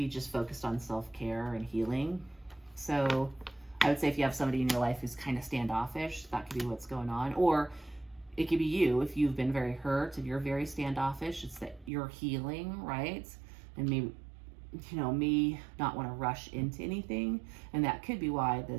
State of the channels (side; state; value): left; drops out; at 11.9 s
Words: just focused on self-care and healing. So I would say if you have somebody in your life who's kind of standoffish, that could be what's going on. Or it could be you, if you've been very hurt and you're very standoffish, it's that you're healing, right? And maybe, you know, may not want to rush into anything. And that could be why